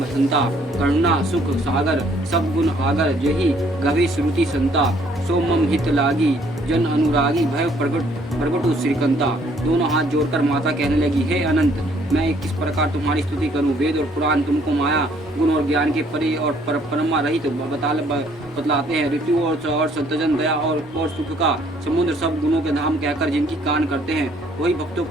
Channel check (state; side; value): normal; both; correlation 0.63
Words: संता। करुणा सुख सागर सब गुण आगर जही गभी श्रुति संता। सोमम हित लागी जन अनुरागी भय प्रगटु श्रीकंता। दोनों हाथ जोड़कर माता कहने लगी, हे अनंत, मैं किस प्रकार तुम्हारी स्तुति करूं। वेद और पुराण तुमको माया गुण और ज्ञान के परे और परमा रहित बतलाते हैं। ऋतु और संतजन दया और सुख का समुद्र सब गुणों के धाम कहकर जिनकी कान करते हैं, वही भक्तों